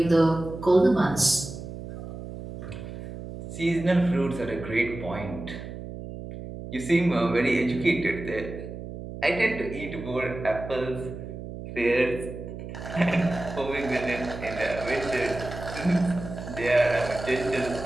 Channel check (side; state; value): right; noise; hum, 10 dB below the sound